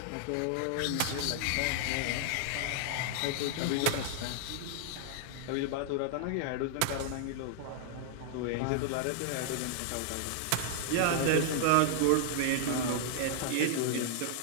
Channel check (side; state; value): both; different; correlation -0.01